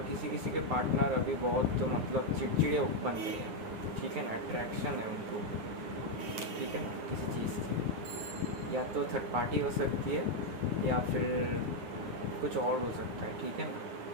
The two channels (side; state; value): left; late; 9.5 ms